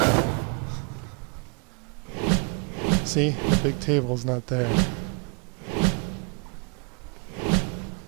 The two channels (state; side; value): quieter; left; 37.3 dB